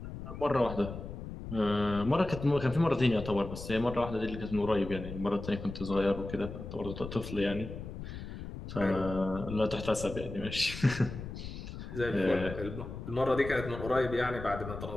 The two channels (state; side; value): noise; left; rumble, 9 dB below the sound